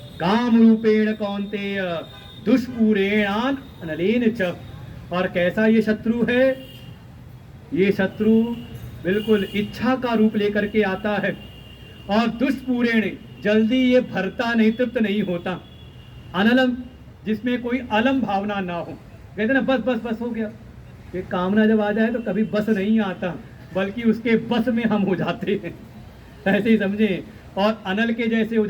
काम रूपेण कौन्तेय दुष्पूरेणान अनलेन च, और कैसा ये शत्रु है, ये शत्रु बिल्कुल इच्छा का रूप लेकर के आता है, और दुष्पूरेण जल्दी ये भरता नहीं, तृप्त नहीं होता। अनलम, जिसमें कोई अलम भावना ना हो, कहते ना बस बस बस हो गया। ये कामना जब आ जाए तो कभी बस नहीं आता, बल्कि उसके बस में हम हो जाते हैं, ऐसे ही समझे। और अनल के जैसे हो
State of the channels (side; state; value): both; identical; correlation 1.00